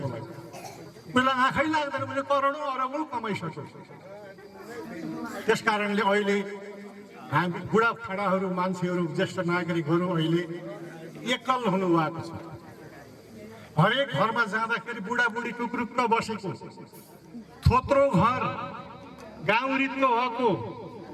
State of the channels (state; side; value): identical; both; correlation 1.00